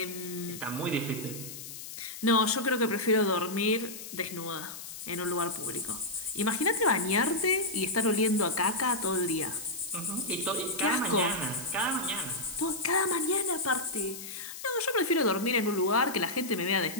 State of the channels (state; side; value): noise; left; hiss, 11 dB below the sound